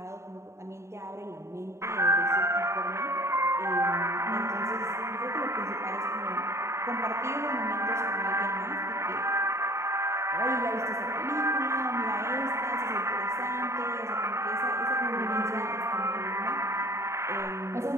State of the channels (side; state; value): left; late; 0.14 ms